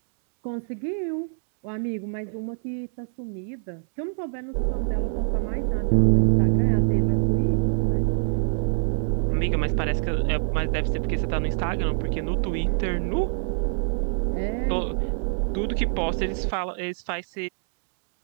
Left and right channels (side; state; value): left; silent; 62 dB below the other